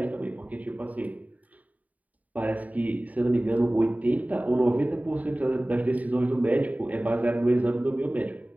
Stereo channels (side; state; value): left; late; 0.072 ms